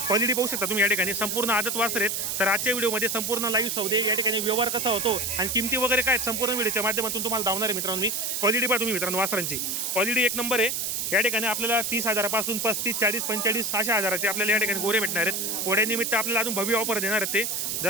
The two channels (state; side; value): noise; right; hiss, 1 dB below the sound